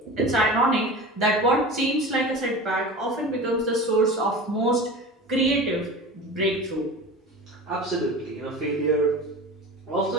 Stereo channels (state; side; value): normal; both; correlation 0.33